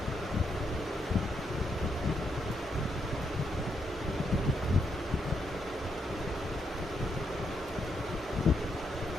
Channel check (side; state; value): both; normal; correlation 0.79